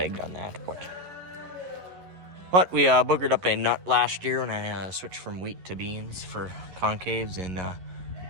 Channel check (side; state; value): left; late; 11 ms